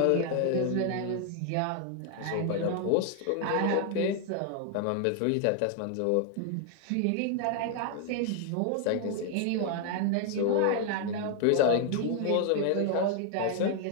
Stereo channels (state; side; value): different; both; correlation 0.00